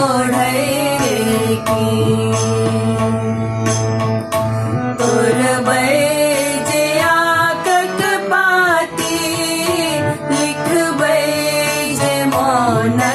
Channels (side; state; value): both; identical; correlation 1.00